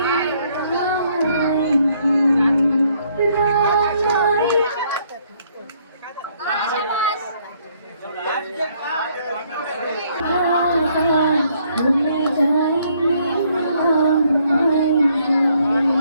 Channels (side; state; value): both; inverted; correlation -0.68